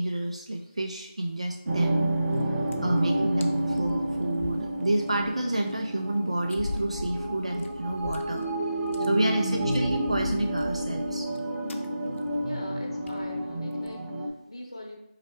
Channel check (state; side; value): inverted; both; correlation -0.90